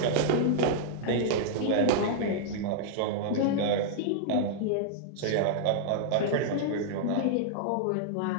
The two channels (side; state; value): both; different; correlation -0.01